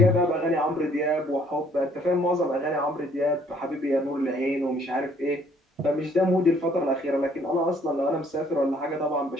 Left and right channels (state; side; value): normal; both; correlation 0.62